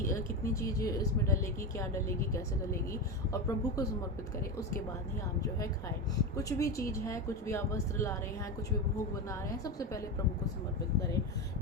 कितनी चीज़ इसमें डलेगी, क्या डलेगी, कैसे डलेगी, और प्रभु को समर्पित करें। उसके बाद ही आप जो है खाएं। कुछ भी चीज़ है, कुछ भी आप वस्त्र ला रहे हैं, कुछ भी भोग बना रहे हैं, सबसे पहले प्रभु को समर्पित करें।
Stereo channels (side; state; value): both; normal; correlation 0.18